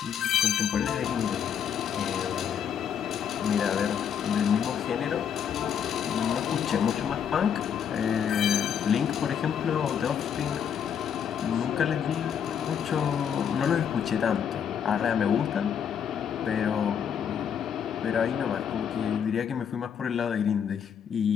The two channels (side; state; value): right; quieter; 8.1 dB